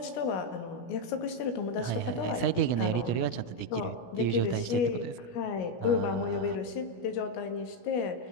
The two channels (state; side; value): late; right; 17 ms